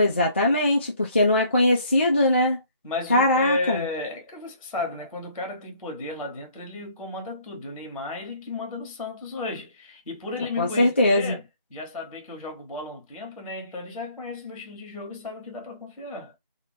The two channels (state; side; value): inverted; both; correlation -0.59